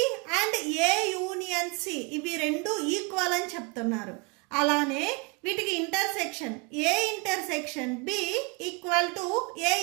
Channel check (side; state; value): left; quieter; 29.4 dB